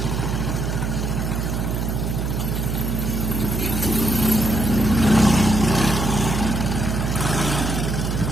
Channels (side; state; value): right; noise; hum, 1 dB below the sound